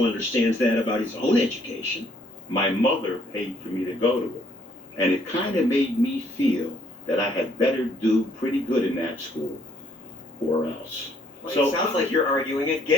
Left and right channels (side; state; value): both; normal; correlation 0.66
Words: understands that about his own education. My mother paid for me to go to it, and it kind of made me feel that I had better do pretty good in that school, or else. Well, it sounds like you're arguing